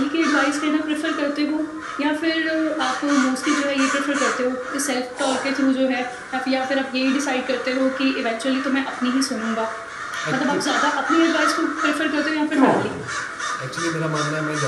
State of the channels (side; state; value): both; identical; correlation 1.00